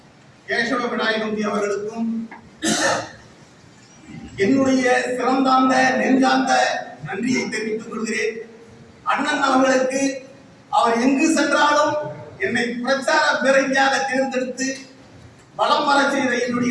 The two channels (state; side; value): identical; both; correlation 1.00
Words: கேசவ விநாயகம்பி அவர்களுக்கும் என்னுடைய சிறந்தாந்த நெஞ்சார்ந்த நன்றியை தெரிவித்துக் கொள்கிறேன். அண்ணன் அவர்களுக்கு அவர் எங்கு சென்றாலும் என்னை பிரச்சார பேரணியாக தேர்ந்தெடுத்து வலம் வர செய்த